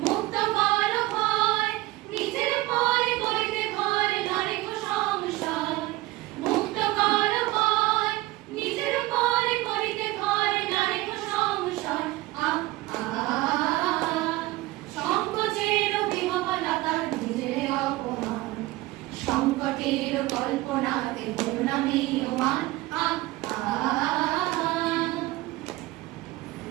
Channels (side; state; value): left; quieter; 18.8 dB